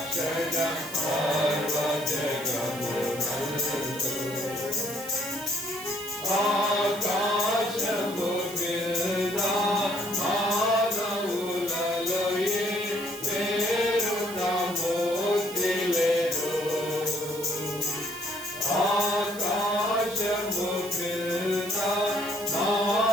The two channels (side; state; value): right; noise; hiss, 14 dB below the sound